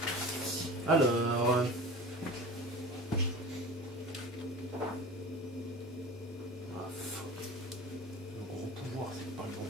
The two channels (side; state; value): both; normal; correlation 0.35